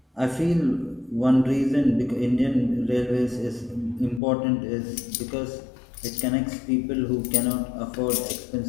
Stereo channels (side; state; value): right; drops out; at 4.2 s